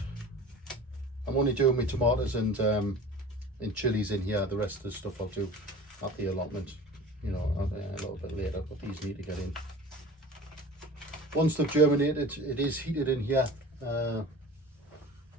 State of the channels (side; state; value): both; normal; correlation 0.39